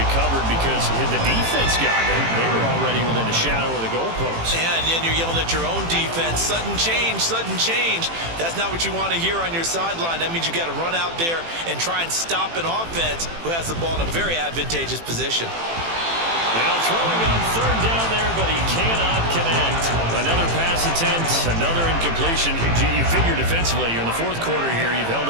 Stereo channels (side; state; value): left; late; 18 ms